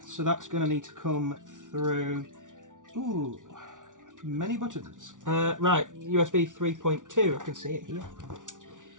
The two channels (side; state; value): left; late; 0.87 ms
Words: So that's going to need to come through. Ooh, many buttons. Right, USB 3.2, I can see it here.